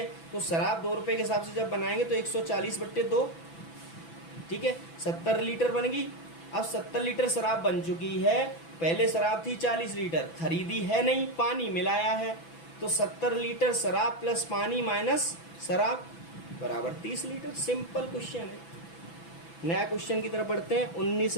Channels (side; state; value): right; late; 6.0 ms